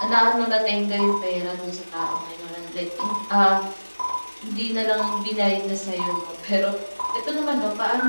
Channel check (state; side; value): inverted; both; correlation -1.00